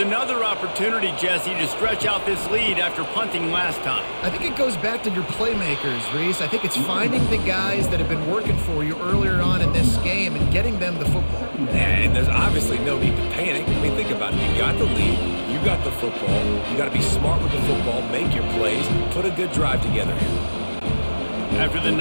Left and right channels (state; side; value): inverted; both; correlation -1.00